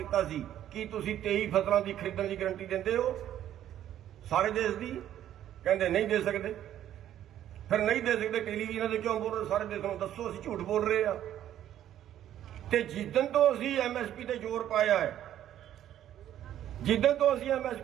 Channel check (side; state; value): left; quieter; 11.5 dB